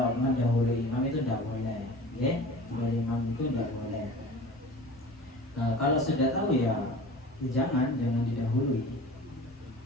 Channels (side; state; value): both; normal; correlation 0.39